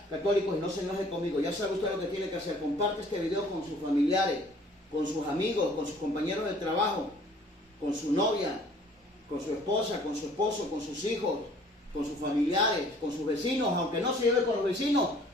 católicos, y no se enoje conmigo. Ya sabe usted lo que tiene que hacer. Comparte este video con sus familiares, con sus amigos, con sus compañeros de trabajo, con su novia, con su esposa, con su esposo, con sus hijos, con sus familiares, con sus vecinos. Aunque no se lleve con los vecinos,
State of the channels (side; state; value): both; normal; correlation 0.55